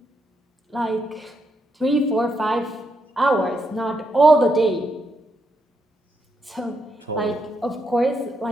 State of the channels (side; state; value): both; normal; correlation 0.80